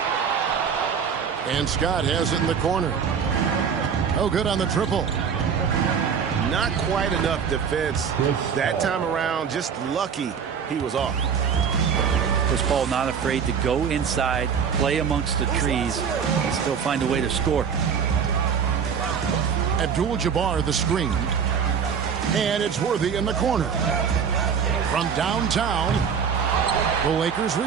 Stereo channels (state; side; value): quieter; left; 6.9 dB